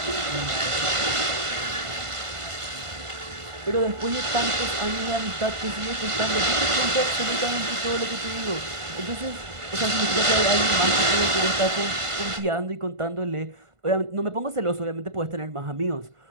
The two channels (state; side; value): late; left; 1.5 ms